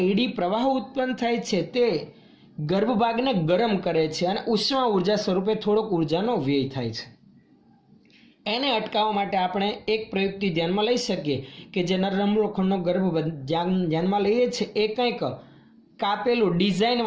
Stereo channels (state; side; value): identical; both; correlation 1.00